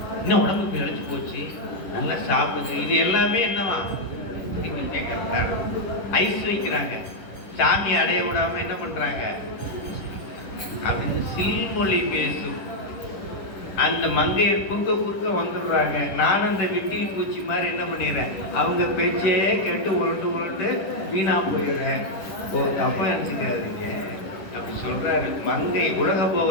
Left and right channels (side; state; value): right; late; 10 ms